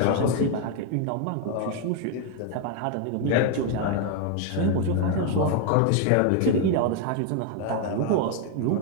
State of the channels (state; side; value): different; both; correlation 0.01